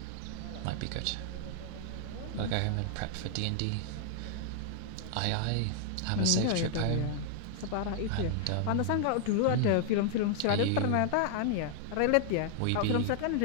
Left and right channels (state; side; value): different; both; correlation 0.00